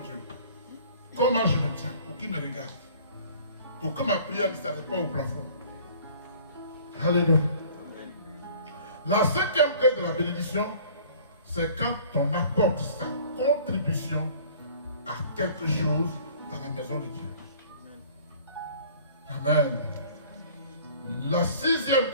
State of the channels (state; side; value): inverted; both; correlation -0.50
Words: Comment je me tiens pour qu'il me regarde. Pour que ma prière ne s'arrête pas au plafond. Alléluia. La cinquième clé de la bénédiction, c'est quand on apporte sa contribution à quelque chose dans la maison de Dieu. Amen. La sixième